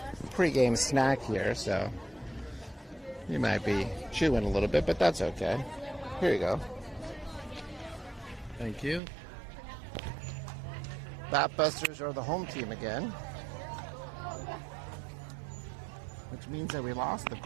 pre-game snack here, so you might be chewing a little bit, but that's okay. Here you go. Thank you. Batbusters are the home team again, which means that we lost the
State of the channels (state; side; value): drops out; left; at 9.0 s